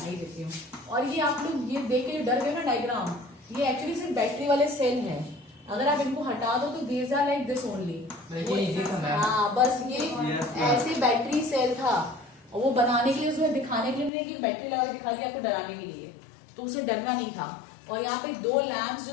ही देती हूँ। और ये आप लोग ये देख के डर गए ना डायग्राम, ये एक्चुअली सिर्फ बैटरी वाले सेल है, अगर आप इनको हटा दो तो these are like this only. हाँ बस ये ऐसे बैटरी सेल था, और वो बनाने के लिए, उसमें दिखाने के लिए नहीं कि बैटरी लगा के दिखा दिया आपको डराने के लिए, तो उसे डरना नहीं था। और यहाँ पे 2 लैम्प्स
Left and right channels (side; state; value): right; drops out; at 14.1 s